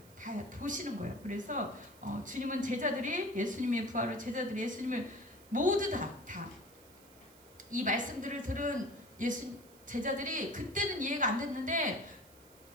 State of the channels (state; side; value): noise; right; hiss, 24 dB below the sound